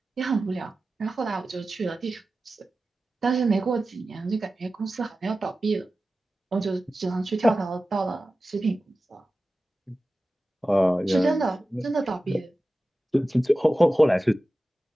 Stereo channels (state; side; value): normal; both; correlation 0.95